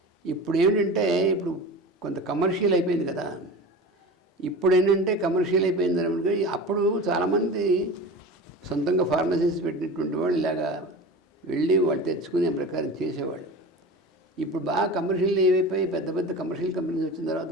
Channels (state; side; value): normal; both; correlation 0.32